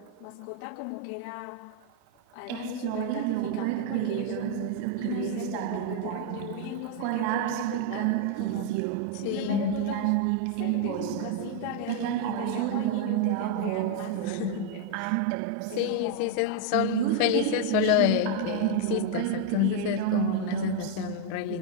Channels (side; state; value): both; different; correlation 0.00